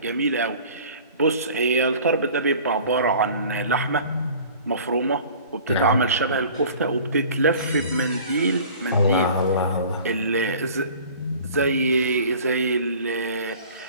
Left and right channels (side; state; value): both; inverted; correlation -0.46